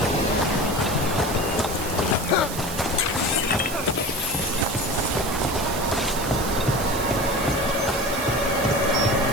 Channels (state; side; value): noise; right; hiss, 8 dB below the sound